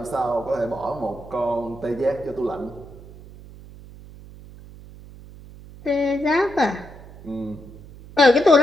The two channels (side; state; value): right; noise; hum, 18 dB below the sound